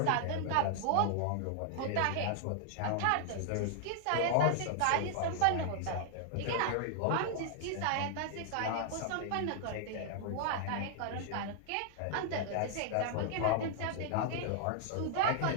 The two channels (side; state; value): both; different; correlation -0.01